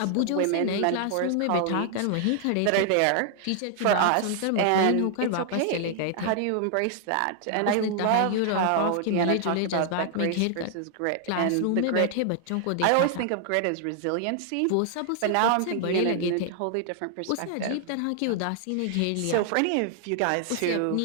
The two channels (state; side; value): different; both; correlation 0.00